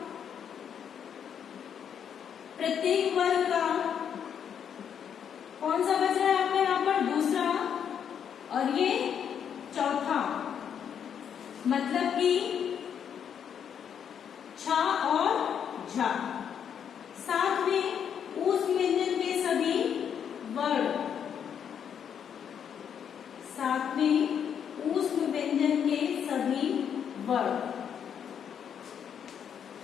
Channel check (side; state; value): right; quieter; 8.2 dB